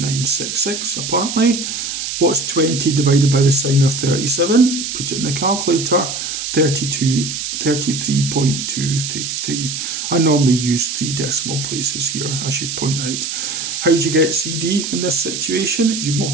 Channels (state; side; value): noise; right; hiss, 4 dB below the sound